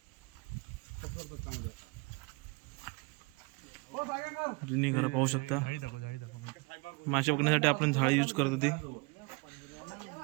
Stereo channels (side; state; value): left; quieter; 28.7 dB